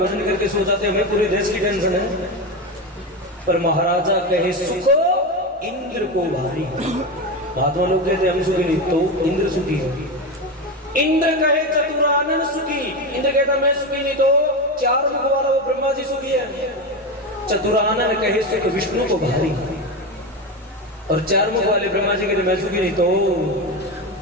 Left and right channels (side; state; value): both; normal; correlation 0.17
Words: करके सो जाते हैं, हमें पूरे देश की टेंशन है। पर महाराजा कहे सुखो इंद्र को भारी, महात्मा लोग कहते हम सुखी नहीं, तो इंद्र सुखी है। इंद्र कहे चतुरानन सुखी, इंद्र कहता मैं सुखी नहीं, तो चार मुख वाला वो ब्रह्मा जी सुखी है। चतुरानन कहे सुख विष्णु को भारी, और चार मुख वाले ब्रह्मा जी कहते मैं सुखी नहीं, तो